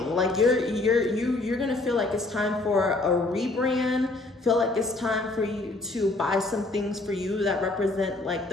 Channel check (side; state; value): right; quieter; 3.0 dB